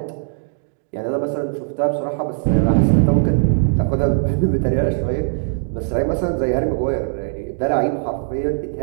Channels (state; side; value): silent; left; digital silence